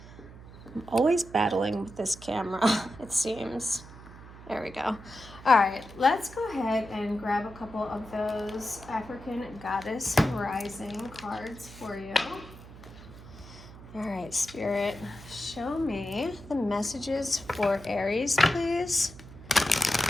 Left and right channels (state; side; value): noise; right; hum, 17 dB below the sound